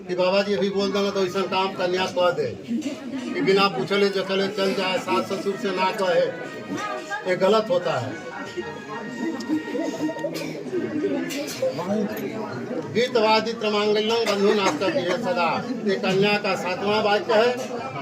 कि बाबा जी अभी बोल देना तो ऐसा काम कन्या कह दे कि बिना पूछले जखले चल जाए, सास ससुर से ना कहे, ये गलत होता है। गीतवादित मांगल्यं बंधु नास्तव्य सदा। ये कन्या का 7वां वाक्य है।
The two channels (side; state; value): both; identical; correlation 1.00